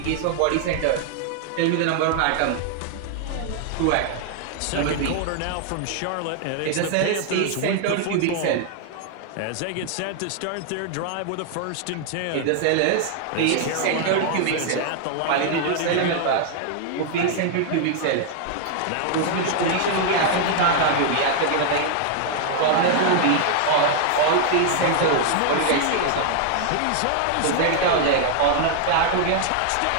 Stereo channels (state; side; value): different; both; correlation 0.00